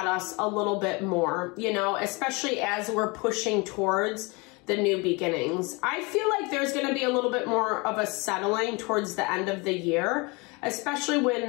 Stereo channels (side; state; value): right; quieter; 27.7 dB